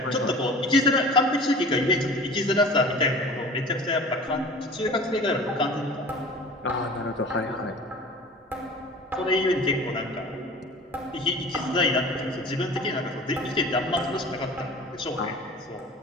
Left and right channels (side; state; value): both; normal; correlation 0.40